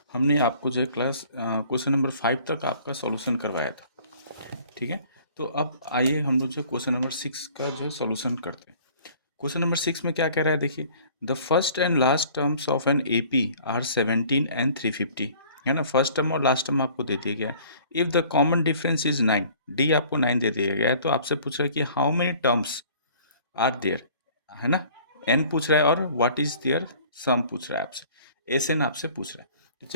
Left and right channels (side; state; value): both; inverted; correlation -0.52